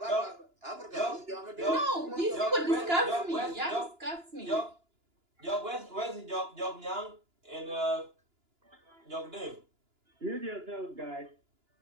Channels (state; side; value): late; left; 2.9 ms